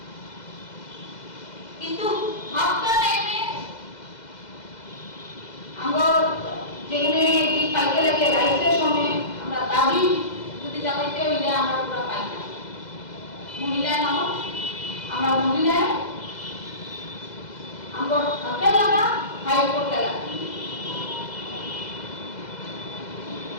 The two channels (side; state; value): right; late; 2.0 ms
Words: কিন্তু ভাবটা টাইমে আমরা যেখানে কি পাইতে লাগে রাইটের সময় আমরা দাবি যদি জানাইতে হইলে আমরা পুরো পাই না মহিলা মানুষ আমরা মহিলায় আমরা হাতে লাগা হাই করতে লাগে